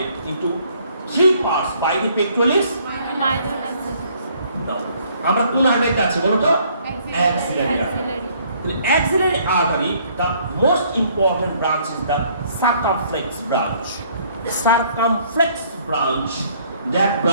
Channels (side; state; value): both; inverted; correlation -0.63